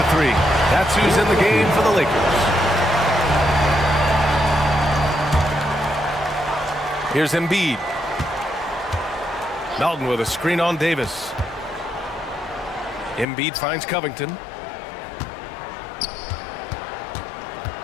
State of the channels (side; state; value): right; drops out; at 13.2 s